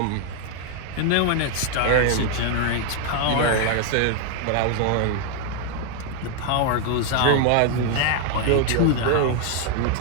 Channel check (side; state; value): both; different; correlation 0.01